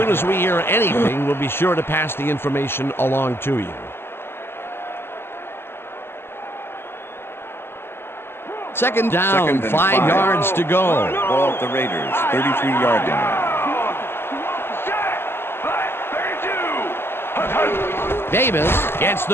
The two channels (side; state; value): right; late; 0.11 ms